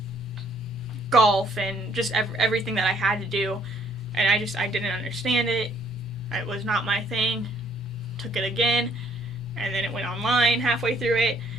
golf and just everything that I had to do. And I didn't understand it. It was not my thing. Took it again, and then it went online halfway through it.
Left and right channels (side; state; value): both; normal; correlation 0.65